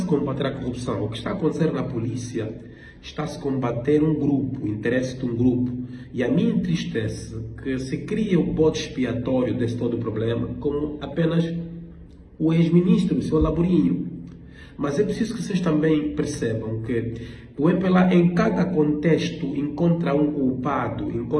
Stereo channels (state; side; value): identical; both; correlation 1.00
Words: a combater a corrupção. O que está a acontecer na polícia está-se a combater um grupo, o interesse de um grupo. E a mim entristece que se cria o bode expiatório desse todo o problema como apenas o ex-ministro, o seu Laborinho. Mas é preciso que vocês também percebam que o MPLA, em cada contexto, encontra um culpado,